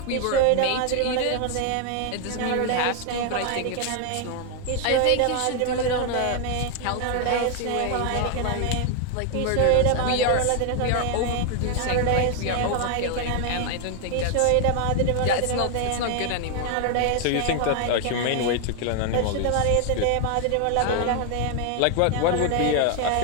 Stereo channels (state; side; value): different; both; correlation 0.00